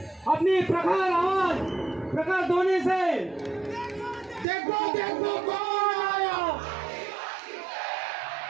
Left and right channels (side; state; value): left; drops out; at 4.5 s